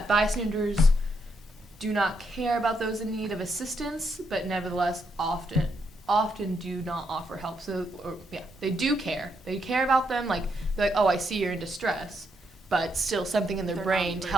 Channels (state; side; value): normal; both; correlation 0.78